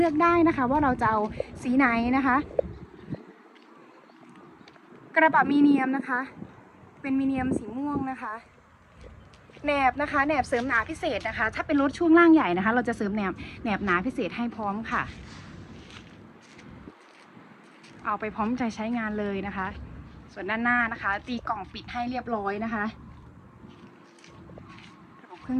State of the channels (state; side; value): identical; both; correlation 1.00